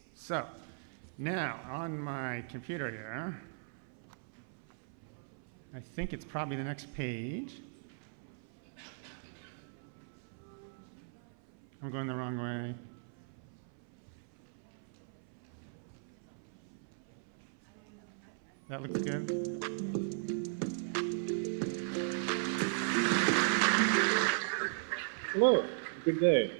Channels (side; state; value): left; silent; 53 dB below the other